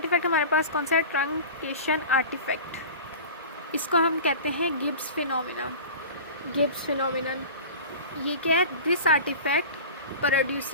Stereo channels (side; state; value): both; inverted; correlation -0.35